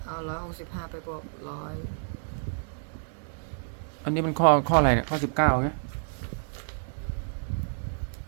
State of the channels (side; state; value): left; silent; digital silence